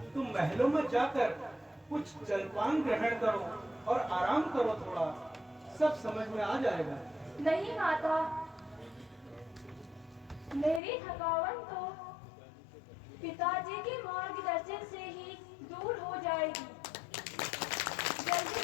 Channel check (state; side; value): drops out; right; at 10.8 s